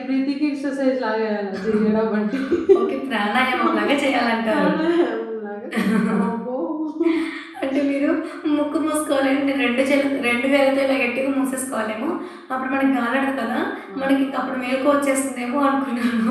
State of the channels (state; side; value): identical; both; correlation 1.00